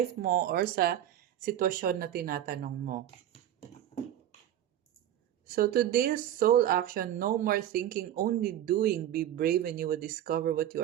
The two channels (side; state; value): left; quieter; 11.6 dB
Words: mo or sa sitwasyon na tinatanong mo. So today's soul action, no more thinking, only doing. Be brave and you will discover what